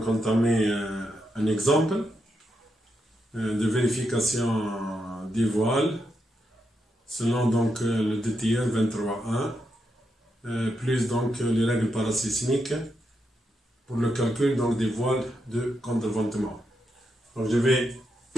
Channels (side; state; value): both; normal; correlation 0.83